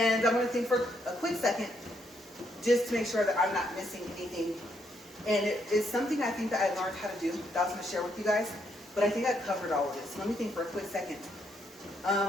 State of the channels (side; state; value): both; normal; correlation 0.75